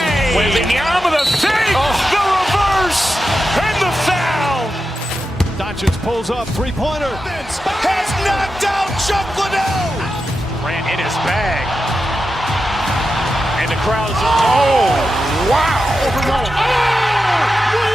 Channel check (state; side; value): normal; both; correlation 0.90